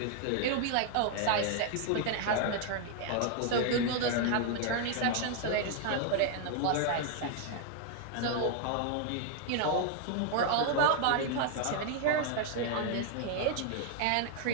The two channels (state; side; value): different; both; correlation 0.00